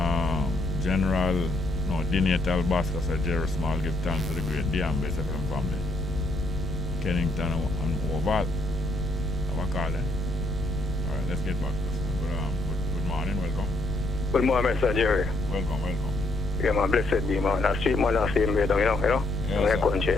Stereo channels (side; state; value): left; noise; rumble, 6 dB below the sound